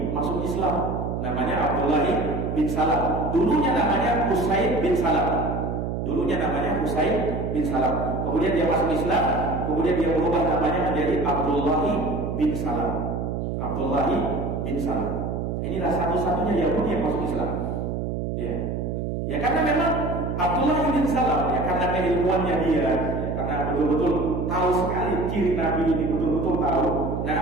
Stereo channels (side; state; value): right; noise; hum, 2 dB below the sound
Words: masuk Islam. Namanya Abdullah bin Salam. Dulunya namanya Husain bin Salam. Dulunya namanya Husain bin Salam. Kemudian dia masuk Islam. Kemudian dia berubah namanya menjadi Abdullah bin Salam. Abdullah bin Salam. Inilah satu-satunya Yahudi yang masuk Islam. Ya. Ya karena memang Abdullah bin Salam ya karena keilmuannya dia, ya, karena betul-betul tahu sekali ciri Nabi ini betul-betul tahu.